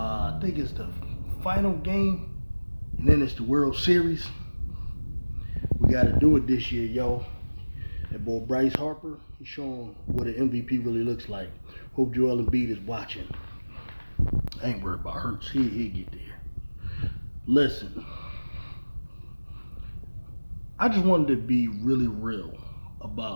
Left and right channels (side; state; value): both; inverted; correlation -1.00